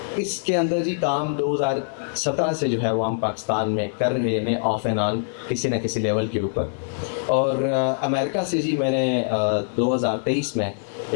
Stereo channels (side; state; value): right; silent; digital silence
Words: इसके अंदर जी काम 2017 से जो है वो हम पाकिस्तान में कर रहे हैं ऑफ एंड ऑन किसी न किसी लेवल के ऊपर। और अमेरिका से जी मैंने 2023 में